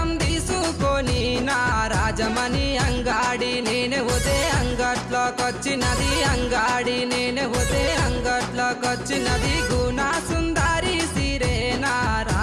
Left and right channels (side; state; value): both; identical; correlation 1.00